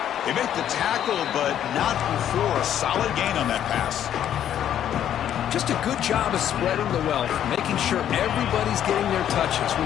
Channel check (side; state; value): right; quieter; 10.4 dB